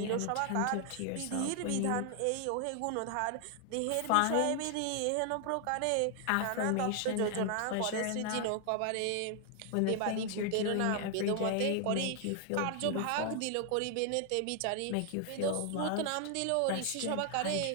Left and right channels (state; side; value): different; both; correlation 0.00